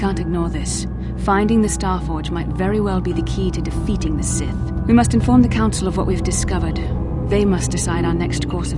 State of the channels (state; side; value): identical; both; correlation 1.00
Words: ignore this. Finding the Starforge might very well be the key to defeating the Sith. We must inform the Council of what we've discovered. They must decide our next course